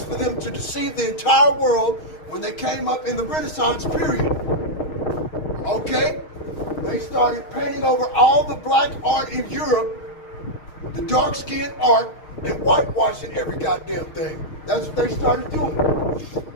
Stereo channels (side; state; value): right; late; 6.4 ms